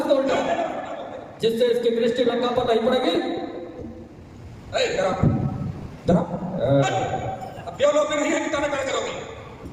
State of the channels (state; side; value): identical; both; correlation 1.00